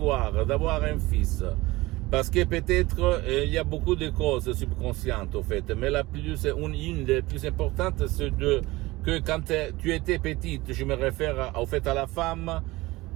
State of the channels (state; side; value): quieter; left; 20.2 dB